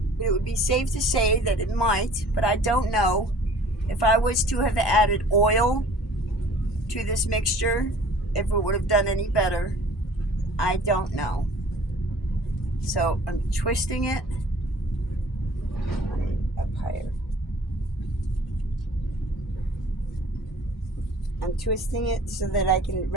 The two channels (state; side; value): normal; both; correlation 0.50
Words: but it would be safe to say that it might, but I don't know if I was to have added oil to this mixture, if it would have done any better. I don't know. So I'm twisting it up higher. I'm twisting it so that I can